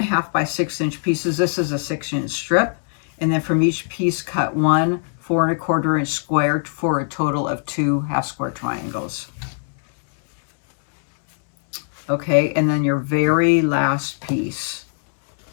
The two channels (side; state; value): right; silent; digital silence